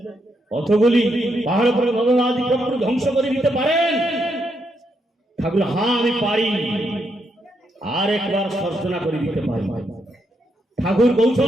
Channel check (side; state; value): both; normal; correlation 0.79